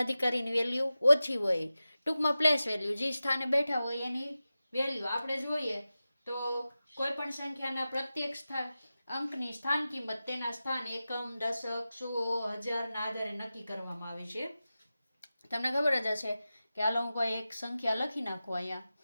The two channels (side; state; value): both; inverted; correlation -0.94